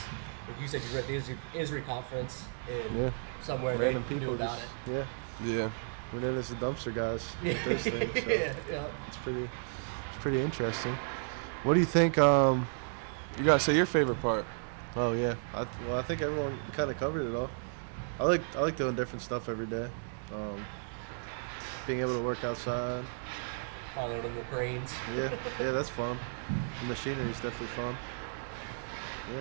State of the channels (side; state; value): left; silent; digital silence